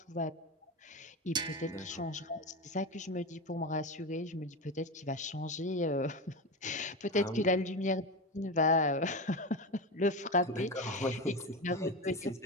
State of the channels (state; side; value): normal; both; correlation 0.20